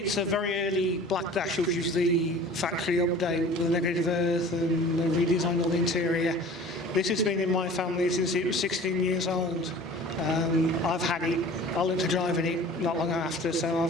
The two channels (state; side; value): normal; both; correlation 0.43